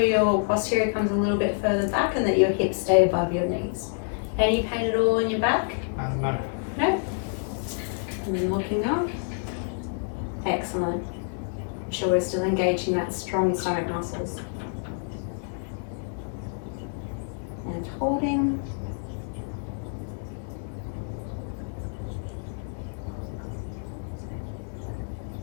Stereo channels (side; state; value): right; silent; 60 dB below the other